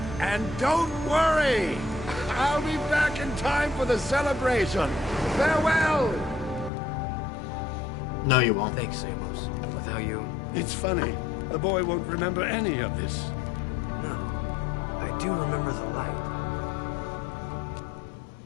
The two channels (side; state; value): right; drops out; at 6.7 s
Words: And don't worry. I'll be back in time for the celebration. Farewell. No, you won't. Thanks, Amos. Without you... It's funny. The boy won't remember any of this. No. I do remember the light.